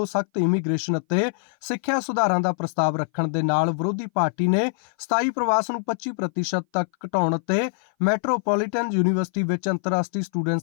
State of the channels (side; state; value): right; silent; 59 dB below the other